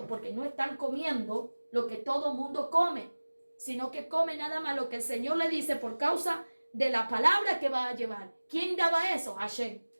porque no están comiendo lo que todo mundo come, sino que come nada más lo que el Señor le dice por causa de la palabra que va a llevar. ¿Quién daba eso? Hashem.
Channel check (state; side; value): inverted; both; correlation -1.00